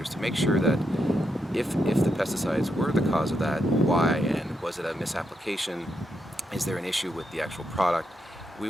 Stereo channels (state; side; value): normal; both; correlation 0.82